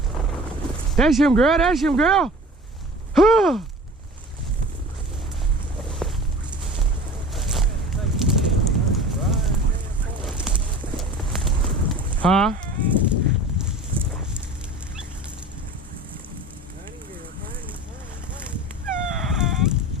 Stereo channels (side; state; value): both; normal; correlation 0.40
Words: That's him, girl. That's him, girl. Huh?